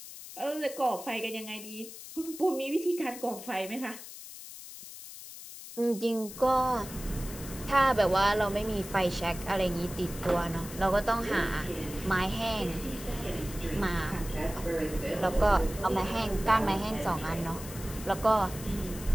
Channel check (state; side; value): noise; left; hiss, 13 dB below the sound